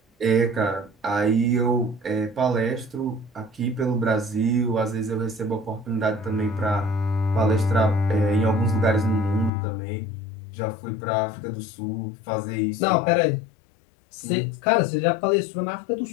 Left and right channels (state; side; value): drops out; right; at 9.5 s